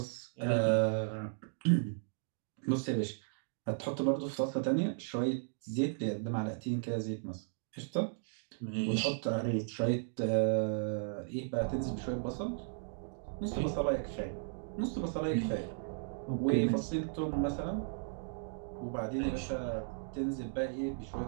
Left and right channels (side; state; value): left; silent; digital silence